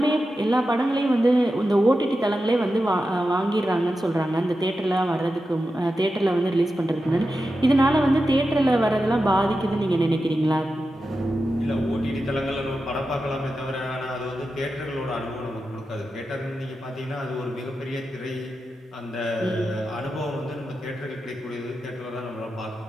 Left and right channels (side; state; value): both; normal; correlation 0.90